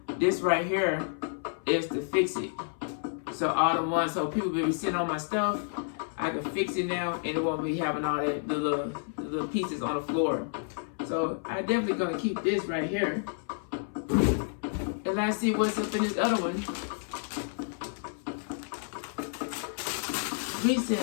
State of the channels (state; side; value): silent; right; 58 dB below the other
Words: this right here is to fix it. So all the ones, so people be sitting on my stuff, I can fix it now and it won't be having all that the little pieces on the floor. So I definitely gonna keep this right here. And let's see what's up in this other one. We